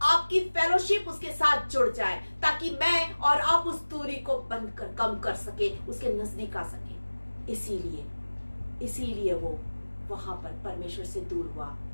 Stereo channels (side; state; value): both; inverted; correlation -1.00